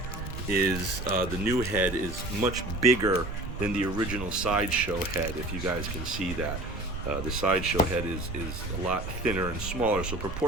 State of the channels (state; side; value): noise; right; rumble, 8 dB below the sound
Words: is, the new head is much bigger than the original SideShow head, if you guys can see that. The SideShow head is a lot thinner and smaller, so